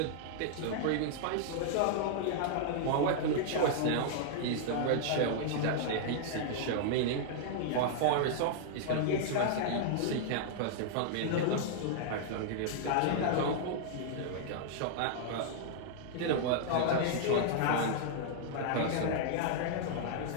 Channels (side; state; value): both; different; correlation -0.01